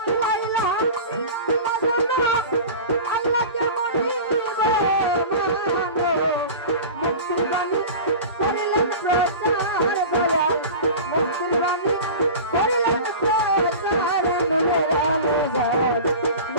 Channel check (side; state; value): both; inverted; correlation -0.33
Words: আল্লাহকে মানিব মুক্তির বাণী করিলেন প্রচার দয়াল মুক্তির বাণী করিলেন প্রচার নূরের আলোজার